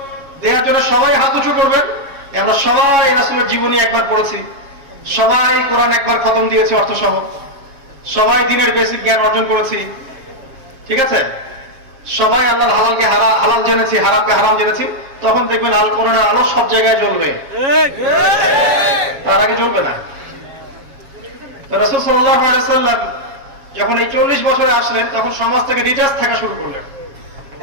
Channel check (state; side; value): late; left; 7.3 ms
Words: দেওয়ার জন্য সবাই হাত উঁচু করবেন, আমরা সবাই রাসূলের জীবনী একবার পড়েছি, সবাই কোরআন একবার খতম দিয়েছি অর্থ সহ, সবাই দ্বীনের বেসিক জ্ঞান অর্জন করেছি, ঠিক আছে? সবাই আল্লাহর হালালকে হালাল জেনেছি, হারামকে হারাম জেনেছি, তখন দেখবেন আল কোরআনের আলো সব জায়গায় জ্বলবে, তার আগে জ্বলবে না। রাসূল সাল্লাল্লাহু আলাইহি ওয়াসাল্লাম যখন এই 40 বছরে আসলেন, তখন সমাজ থেকে ডিটাচ থাকা শুরু করলেন।